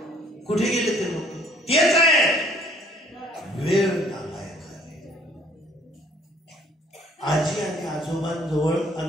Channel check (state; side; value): normal; both; correlation 0.59